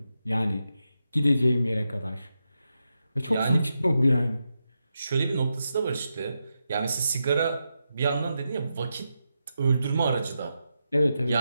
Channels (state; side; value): inverted; both; correlation -0.87